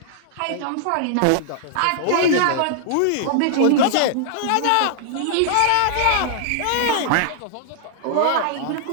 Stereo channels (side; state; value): both; different; correlation -0.01